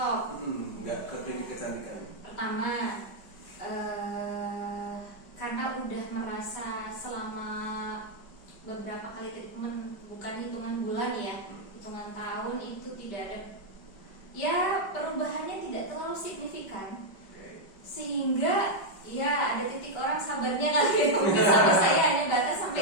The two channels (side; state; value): right; late; 5.0 ms